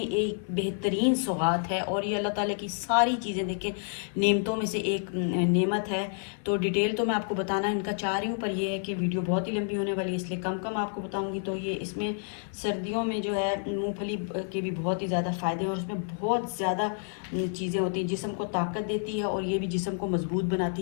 बेहतरीन सौगात है और ये अल्लाह ताला की सारी चीज़ें देखें नेमतों में से एक नेमत है। तो डिटेल तो मैं आपको बताना इनका चाह रही हूँ, पर यह है कि वीडियो बहुत ही लंबी होने वाली है, इसलिए कम कम आपको बताऊँगी। तो ये इसमें सर्दियों में जो है मूँगफली के भी बहुत ही ज़्यादा फ़ायदे हैं और इसमें बहुत ज़्यादा चीज़ें होती हैं, जिस्म को ताकत देती है और ये भी जिस्म को मजबूत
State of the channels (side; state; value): right; silent; 58 dB below the other